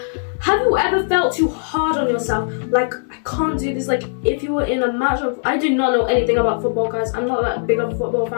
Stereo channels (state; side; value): silent; right; 66 dB below the other